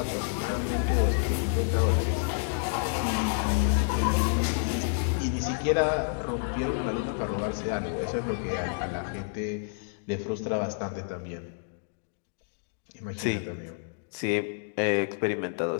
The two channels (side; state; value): right; silent; digital silence